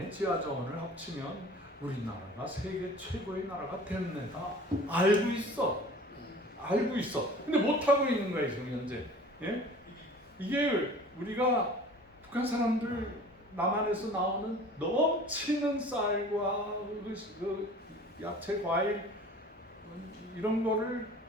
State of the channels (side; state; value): both; normal; correlation 0.45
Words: 지하자원을 합치면 우리나라가 세계 최고의 나라가 됐네다. 알고 있어. 알고 있어. 근데 못하고 있는 거예요, 지금 현재. 예? 이게 우리가 북한 사람들 남한에서 나오는 넘치는 쌀과 그 야채, 과일 이런 거를